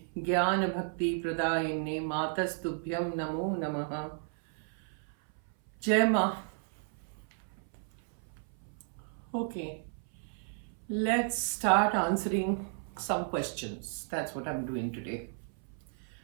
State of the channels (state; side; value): silent; left; 55 dB below the other